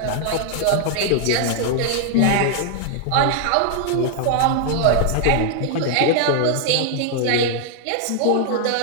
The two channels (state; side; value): different; both; correlation 0.00